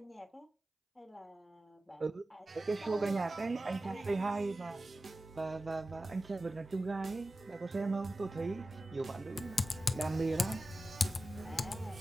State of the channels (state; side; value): normal; both; correlation 0.93